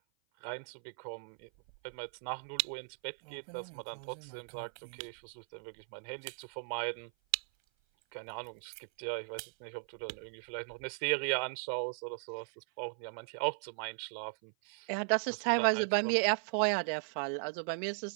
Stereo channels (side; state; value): left; silent; 53 dB below the other